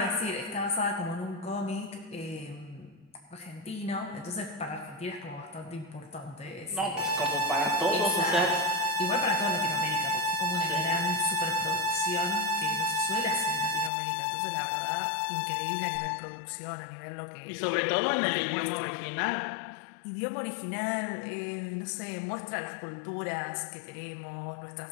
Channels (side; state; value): right; drops out; at 13.9 s